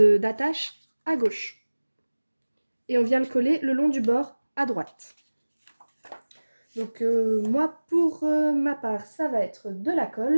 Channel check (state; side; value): inverted; both; correlation -1.00